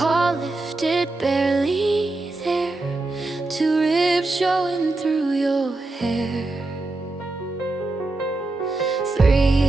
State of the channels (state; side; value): quieter; left; 3.1 dB